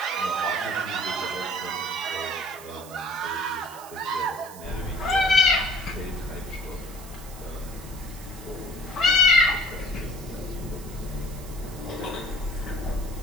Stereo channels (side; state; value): right; noise; hiss, 17 dB below the sound